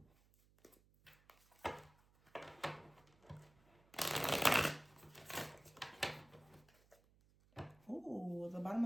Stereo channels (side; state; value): right; noise; hum, 30 dB below the sound